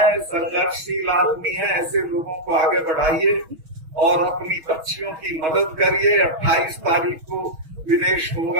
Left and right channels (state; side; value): late; left; 6.2 ms